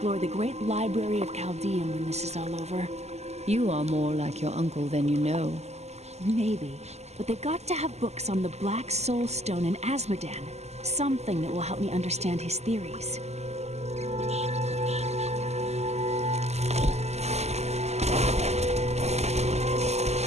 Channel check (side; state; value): left; late; 0.32 ms